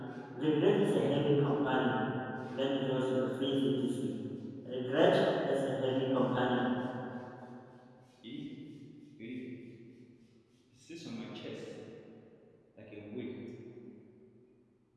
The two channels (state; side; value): identical; both; correlation 1.00